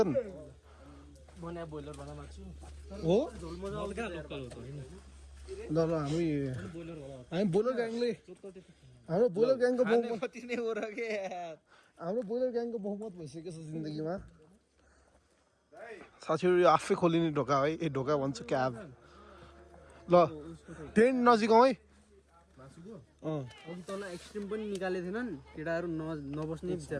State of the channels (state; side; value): identical; both; correlation 1.00